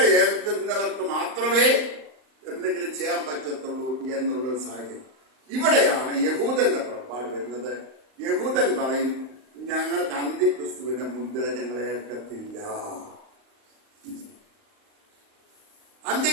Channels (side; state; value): left; late; 38 ms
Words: ഏൽക്കുന്നവർക്ക് മാത്രമേ എന്തെങ്കിലും ചെയ്യാൻ പറ്റത്തുള്ളൂ എന്നുള്ള സാഹചര്യം. ഇവിടെയാണ് യഹൂദന്റെ പുറപ്പാട് വരുന്നത്. യഹൂദൻ പറയും, ഞങ്ങൾക്ക് അന്ത്യക്രിസ്തുവിന്റെ മുദ്ര ഞങ്ങളെ ഏൽക്കത്തില്ല.